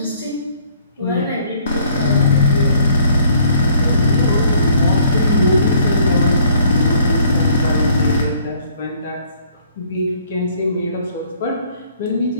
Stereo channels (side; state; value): both; inverted; correlation -0.60